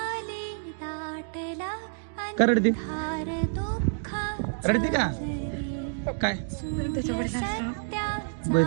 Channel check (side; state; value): left; silent; digital silence